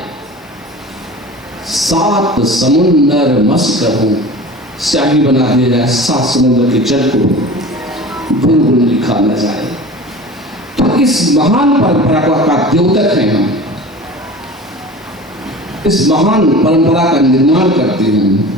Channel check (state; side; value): normal; both; correlation 0.38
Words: 7 समुंदर मस्त करो, स्याही बना दिया जाए, 7 समुद्र के जल को गुनगुन लिखा न जाए। तो इस महान परंपरा का द्योतक है हम, इस महान परंपरा का निर्माण करते हैं